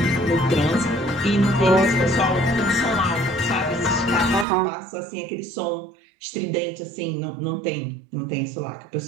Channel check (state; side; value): drops out; left; at 4.5 s